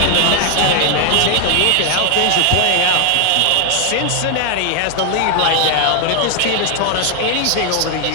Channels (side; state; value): both; different; correlation 0.00